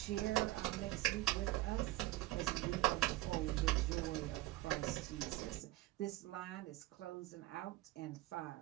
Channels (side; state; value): left; quieter; 17.9 dB